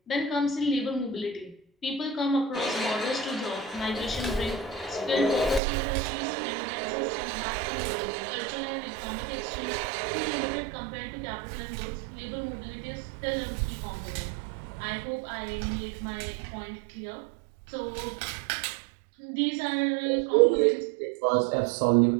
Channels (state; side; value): drops out; left; at 5.6 s